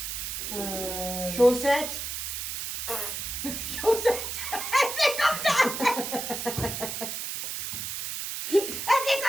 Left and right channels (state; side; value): noise; right; hiss, 5 dB below the sound